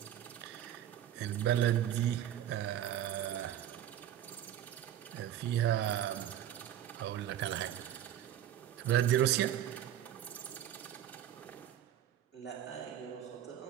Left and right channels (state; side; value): quieter; left; 11.2 dB